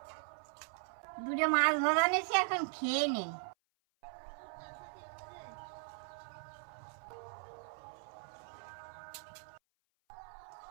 দুটো মাছ ভাজা নিয়েছি, এখন খেয়ে নেই।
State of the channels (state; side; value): silent; left; 52 dB below the other